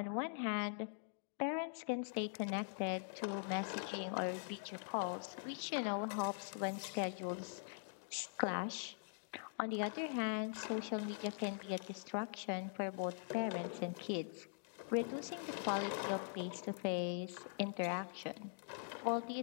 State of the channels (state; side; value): silent; right; digital silence